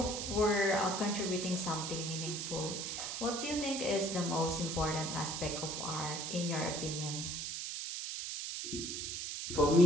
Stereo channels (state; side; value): noise; right; hiss, 4 dB below the sound